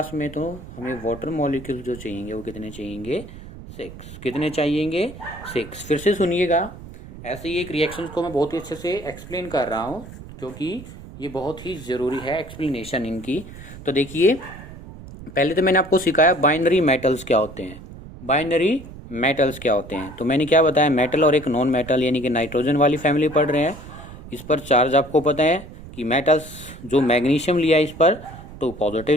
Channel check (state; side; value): noise; right; rumble, 15 dB below the sound